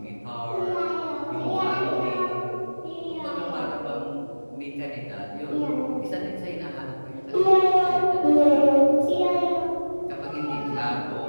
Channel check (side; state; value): both; inverted; correlation -1.00